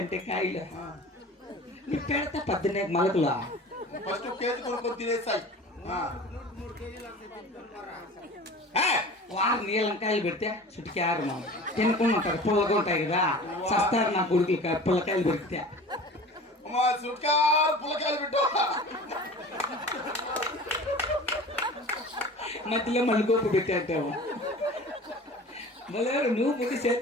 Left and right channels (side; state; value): both; normal; correlation 0.39